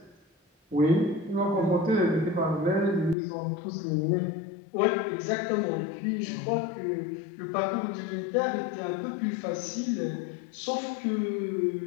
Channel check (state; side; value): drops out; right; at 3.2 s